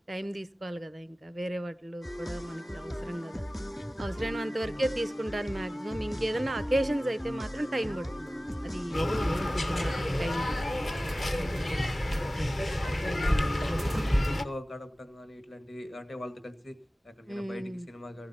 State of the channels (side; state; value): both; normal; correlation 0.97